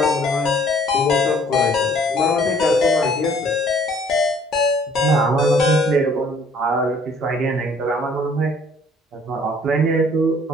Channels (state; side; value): normal; both; correlation 0.57